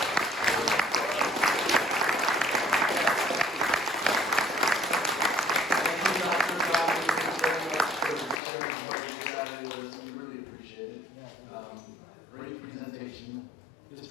Great presentation. This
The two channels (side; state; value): right; drops out; at 8.4 s